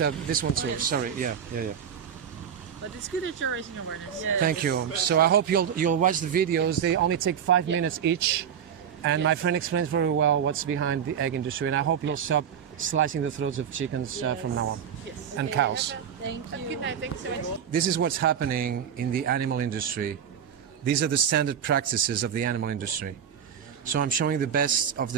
one too. yes. Sorry. Yeah. But it's good that you're raising awareness. Yeah. Thank you. So I hope you'll watch the videos. They only take 5 minutes each, and my friend explains very well what's behind the egg industry. And I hope you'll stop slicing the throats of chickens from now on, and cows. Thank you. Good night. Thanks so much. This is what's happening in the animal industry. These are the standard practices of the animal industry. So I'm showing the best of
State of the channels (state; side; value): quieter; left; 8.3 dB